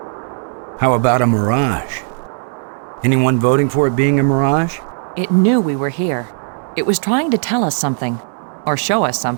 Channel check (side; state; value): left; silent; 68 dB below the other